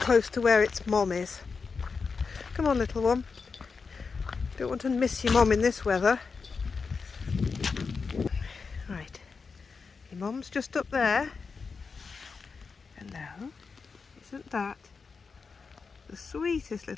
to where its mom is. Come on, little one. Don't want to miss your mom in this weather. Right, your mom's just up there. Hello. Isn't that the sweetest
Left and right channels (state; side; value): quieter; right; 5.0 dB